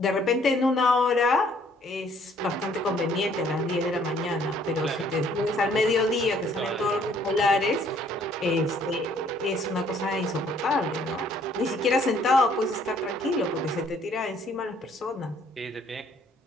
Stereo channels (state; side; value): normal; both; correlation 0.62